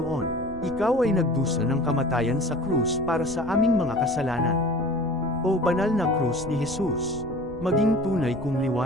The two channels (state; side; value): noise; right; rumble, 16 dB below the sound